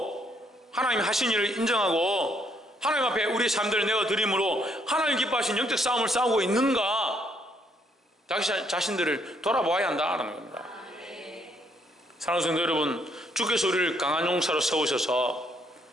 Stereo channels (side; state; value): both; normal; correlation 0.70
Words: 하나님이 하신 일을 인정하고 하나님 앞에 우리의 삶들을 내어드림으로 하나님 기뻐하신 영적 싸움을 싸우고 있는가? 자기 자신들을 돌아보아야 한다는 겁니다. 사랑하는 성도 여러분, 주께서 우리를 강한 용사로 세우셔서